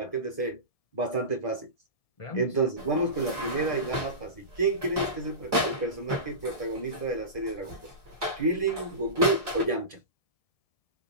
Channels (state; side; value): late; right; 1.7 ms